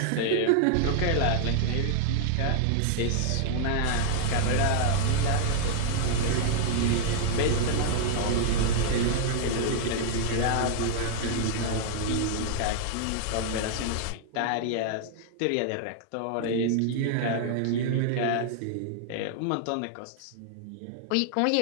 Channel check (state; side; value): different; both; correlation 0.00